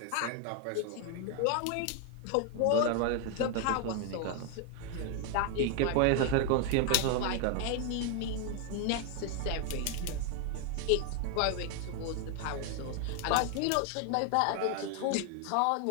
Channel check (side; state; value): both; different; correlation 0.00